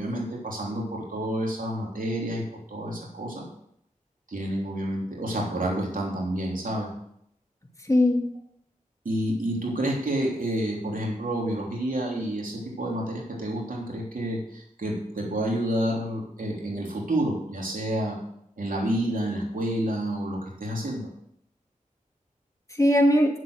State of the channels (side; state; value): both; normal; correlation 0.77